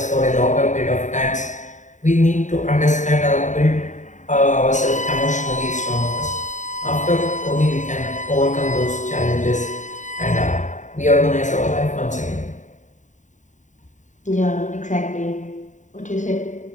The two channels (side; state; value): right; late; 0.36 ms